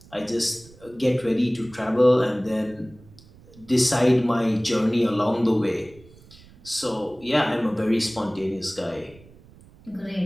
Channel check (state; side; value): noise; right; rumble, 24 dB below the sound